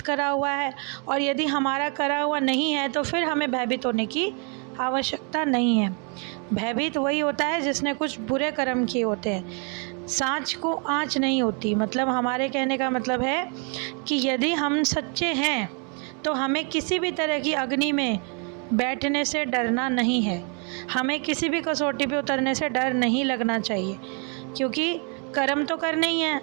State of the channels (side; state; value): left; quieter; 38.0 dB